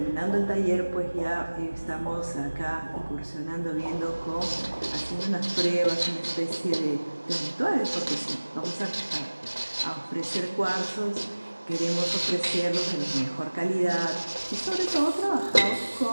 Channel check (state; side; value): inverted; both; correlation -1.00